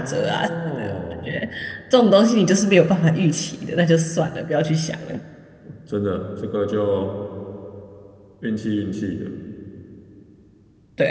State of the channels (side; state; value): both; identical; correlation 1.00